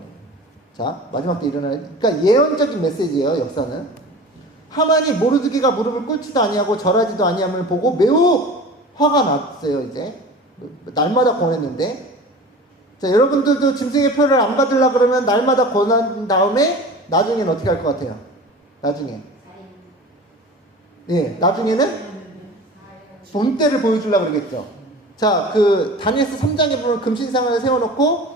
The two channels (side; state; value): both; normal; correlation 0.37